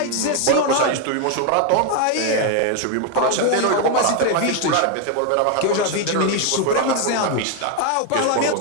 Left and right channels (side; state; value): both; different; correlation 0.01